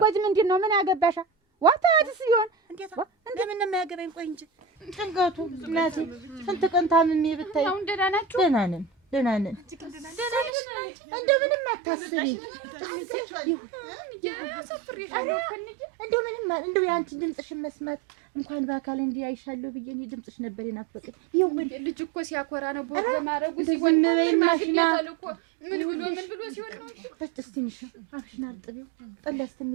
ምንድን ነው? ምን ያገባሻ? ዋታዲስ ይሆን እንዴት እንደምን ነው የሚያገባኝ? ቆይ እንጂ ጭንቀቱ እናቴ ስንት ቀን ታምሜ ብታይ። አሁን ደህና ናችሁ? ደህና ነን። እንደምንም አታስቢ። እንደው የአንቺን ድምፅሽን መስማት እንኳን በአካል እንዲህ አይሻለሁ ብዬ እኔ ድምፅሽ ነበር የናፈቀኝ። ይሁን ልጅ እኮ ሲያኮራ ነው ቦግ ማረጉ ሲሆን ዝም በይ ማሽና ምን ብሎ ሲሆን ነው። እስቲ ትንሽ አፍሽን አርጥቢው ጠላ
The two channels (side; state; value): left; drops out; at 10.5 s